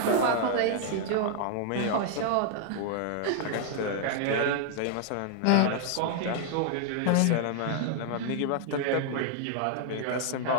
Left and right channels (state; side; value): different; both; correlation 0.00